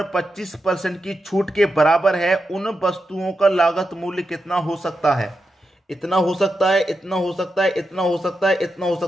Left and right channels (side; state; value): both; normal; correlation 0.87